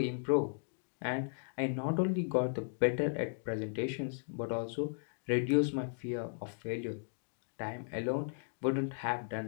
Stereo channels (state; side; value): silent; right; digital silence